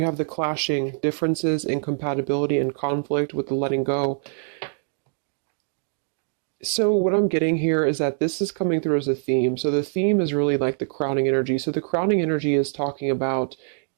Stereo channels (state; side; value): silent; left; digital silence